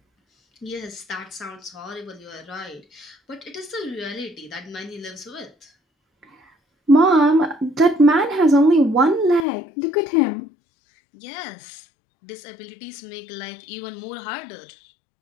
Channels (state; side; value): drops out; right; at 9.5 s